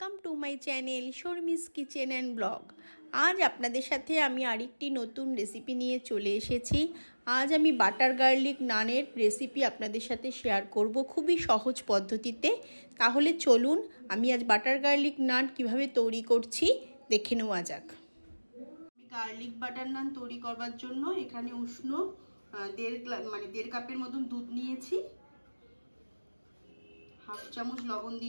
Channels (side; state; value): both; inverted; correlation -1.00